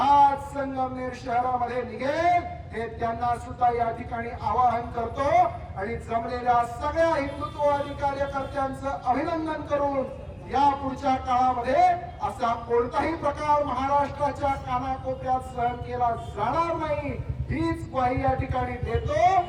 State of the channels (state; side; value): identical; both; correlation 1.00